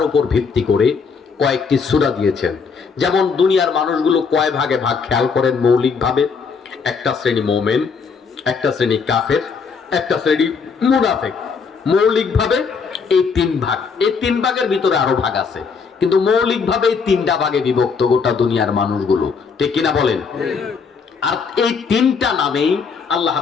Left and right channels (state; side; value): quieter; right; 5.5 dB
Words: উপর ভিত্তি করে কয়েকটি সূরা দিয়েছেন। যেমন দুনিয়ার মানুষগুলো কয় ভাগে ভাগ খেয়াল করেন মৌলিকভাবে। একটা শ্রেণী মুমিন, একটা শ্রেণী কাফের, একটা শ্রেণী মুনাফিক। মৌলিকভাবে এই তিন ভাগ। এই তিন ভাগের ভিতরে আরো ভাগ আছে, কিন্তু মৌলিকভাবে এই তিনটা ভাগে বিভক্ত গোটা দুনিয়ার মানুষগুলো, ঠিক কিনা বলেন? আর এই তিনটা নামেই আল্লাহ